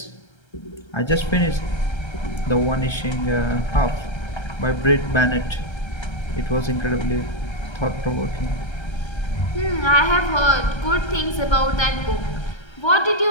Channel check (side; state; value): right; late; 1.3 ms